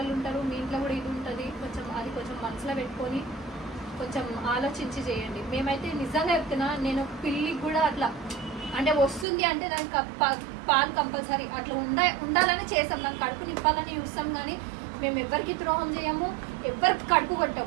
ఉంటారు, మీ ఇంట్లో కూడా ఇది ఉంటుంది, కొంచెం మనసులో పెట్టుకొని కొంచెం ఆలోచించి చేయండి. మేమైతే నిజంగా చెప్తున్నా, నేను పిల్లికి కూడా అట్లా అంటే వస్తుంది అంటే దానికి పాలు కంపల్సరీ అట్లా ఉండాలని చేస్తాం, దానికి కడుపు నింపాలని చూస్తాం. కానీ మేము ఎవరికి ద్రోహం చేయము, ఎవరికి కడుపు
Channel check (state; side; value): drops out; left; at 9.2 s